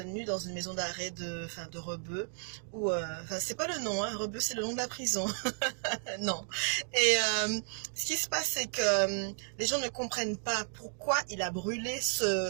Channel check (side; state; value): left; silent; 56 dB below the other